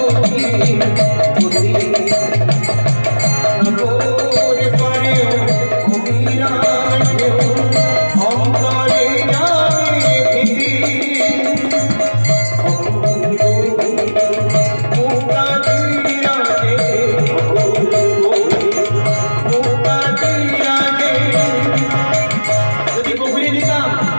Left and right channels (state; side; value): inverted; both; correlation -1.00